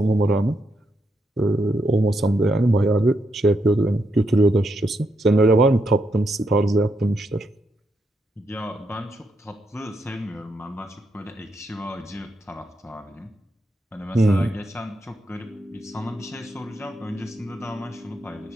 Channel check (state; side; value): normal; both; correlation 0.80